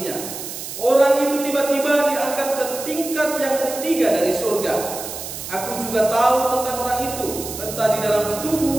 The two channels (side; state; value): right; noise; hiss, 9 dB below the sound